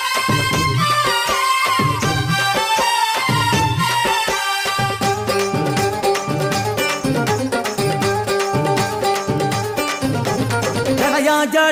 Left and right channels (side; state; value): both; identical; correlation 1.00